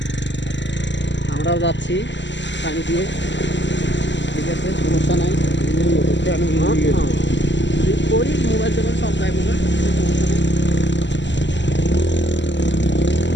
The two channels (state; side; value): late; right; 0.53 ms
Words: আমরাও যাচ্ছি পানি দিয়ে, ঠিক আছে, সমস্যা নাই। করি মোবাইল টোবাইল সব যাইব না, সমস্যা নেই।